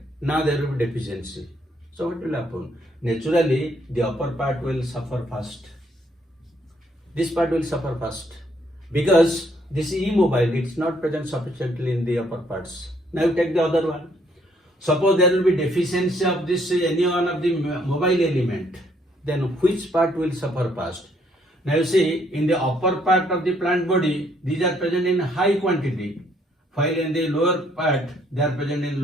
Now there will be deficiency. So what will happen? Naturally the upper part will suffer first. This part will suffer first because this is immobile. It's not present sufficiently in the upper parts. Now you take the other one. Suppose there will be deficiency of this any one of the mobile element, then which part will suffer first? Now you see, in the upper part of the plant body, these are present in high quantity, while in the lower part they are present in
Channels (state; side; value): normal; both; correlation 0.68